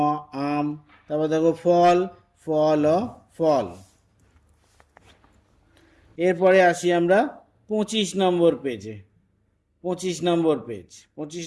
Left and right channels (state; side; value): identical; both; correlation 1.00